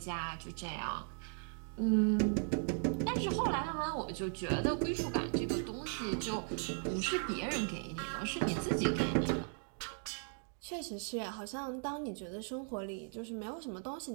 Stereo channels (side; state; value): left; silent; 53 dB below the other